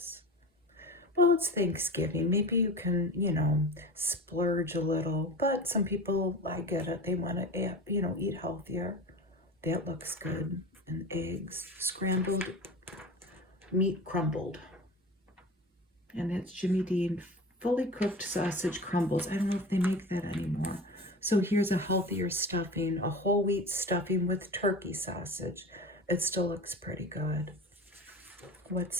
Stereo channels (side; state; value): both; normal; correlation 0.33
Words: Well, it's Thanksgiving. Maybe you can, splurge a little. But some people, I get it, they want to, eat healthier. That looks good. And eggs, scrambled meat crumbled. And that's Jimmy Dean fully cooked sausage crumbles. I don't know if they make that anymore. So here's a healthier stuffing, a whole wheat stuffing with turkey sausage. It still looks pretty good.